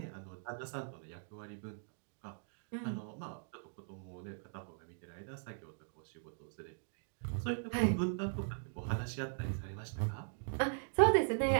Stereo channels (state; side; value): silent; left; digital silence